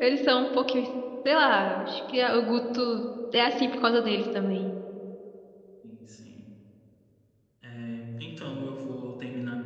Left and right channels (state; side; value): identical; both; correlation 1.00